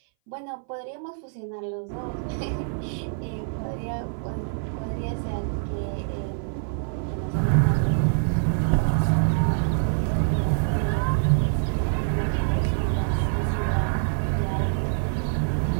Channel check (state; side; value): silent; left; 60 dB below the other